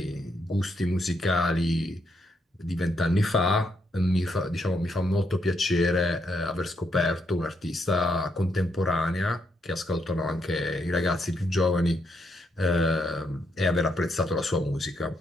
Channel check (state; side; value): normal; both; correlation 0.78